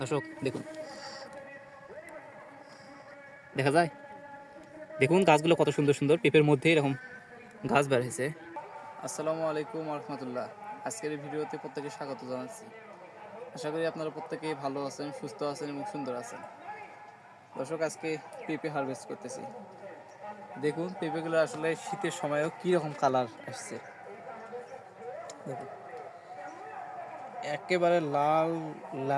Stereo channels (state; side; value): identical; both; correlation 1.00